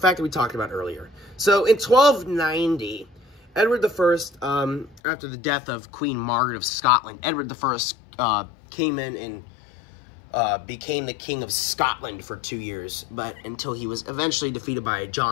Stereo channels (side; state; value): right; drops out; at 5.0 s